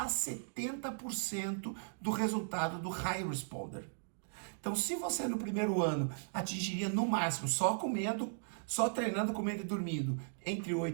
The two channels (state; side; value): silent; left; digital silence